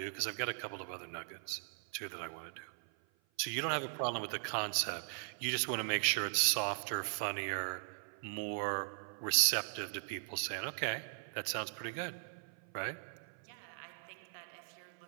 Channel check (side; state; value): left; silent; 52 dB below the other